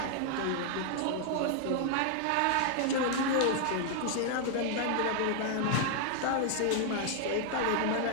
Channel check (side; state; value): both; different; correlation 0.00